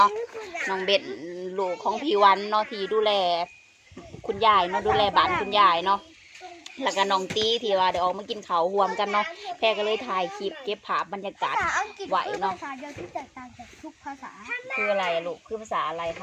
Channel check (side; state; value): both; identical; correlation 1.00